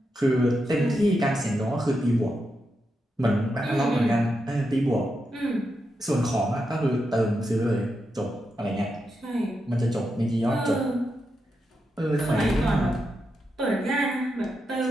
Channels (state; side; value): normal; both; correlation 0.86